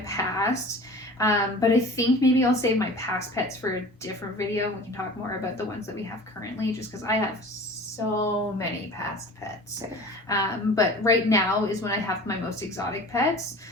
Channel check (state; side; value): normal; both; correlation 0.40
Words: past, but I think maybe I'll save my past pets for a different video. We can talk more about the ones that we have currently, just because I have so many past pets. But right now is when I have my most exotic pets.